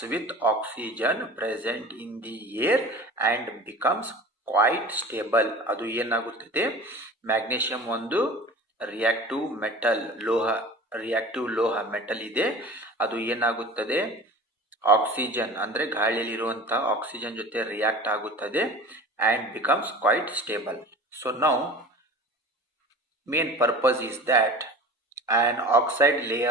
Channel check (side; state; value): both; normal; correlation 0.38